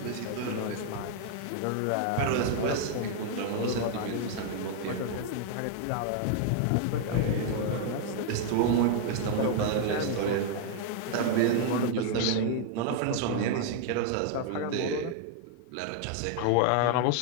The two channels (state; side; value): different; both; correlation 0.00